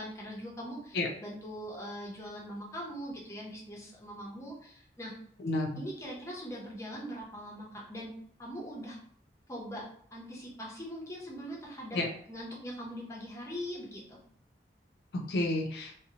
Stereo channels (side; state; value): both; normal; correlation 0.55